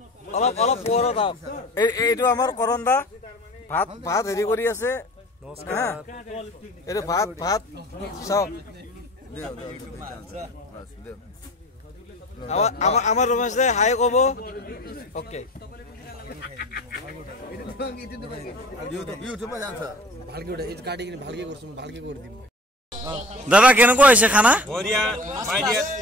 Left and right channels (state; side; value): normal; both; correlation 0.41